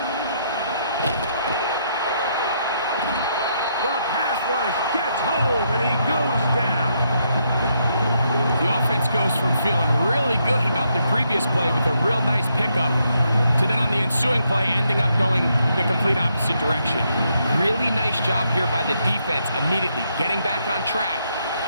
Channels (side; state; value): both; inverted; correlation -0.76